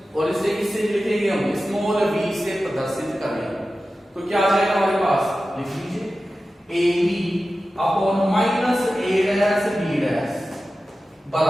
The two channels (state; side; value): normal; both; correlation 0.94